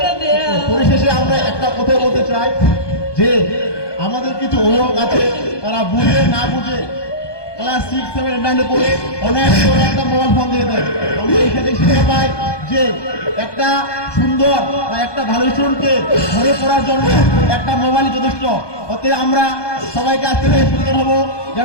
দেয়া? পরিশেষে আমরা একটা কথা বলতে চাই যে আমাদের কিছু অভিভাবক আছে, তারা বুঝে না বুঝে ক্লাস 6, 7, 9 পড়ে অনেক বড় একটা মোবাইল ফোন দিয়ে দেয়। আমরা এখানে শিক্ষা পাই যে একটা সুন্দর বা একটা ভালো স্টুডেন্টকে ঘরে পড়ার জন্য একটা মোবাইল যথেষ্ট। অতএব আমরা সবাইকে আজ থেকে সচেতন হব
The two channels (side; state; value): right; late; 1.2 ms